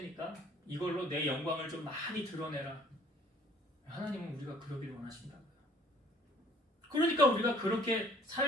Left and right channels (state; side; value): normal; both; correlation 0.55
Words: 이걸로 내 영광을 좀 많이 드러내라. 하나님은 우리가 그러길 원하신다고요. 그러니까 우리가 그렇게